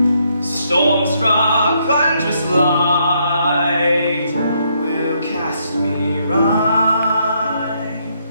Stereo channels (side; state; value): both; inverted; correlation -0.74